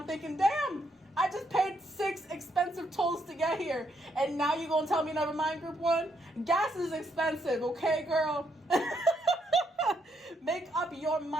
thinking, damn, I just paid 6 expensive tolls to get here. And now you gonna tell me never mind, group one? Gas is expensive, okay, girl? Make up your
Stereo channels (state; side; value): normal; both; correlation 0.75